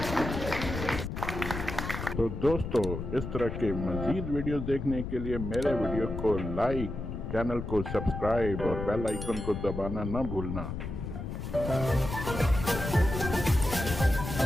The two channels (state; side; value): noise; left; rumble, 6 dB below the sound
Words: तो दोस्तों, इस तरह के मजीद वीडियोस देखने के लिए मेरे वीडियो को लाइक, चैनल को सब्सक्राइब और बेल आइकन को दबाना न भूलना।